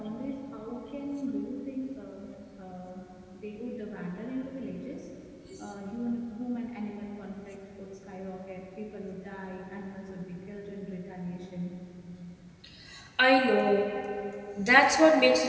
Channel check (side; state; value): both; identical; correlation 1.00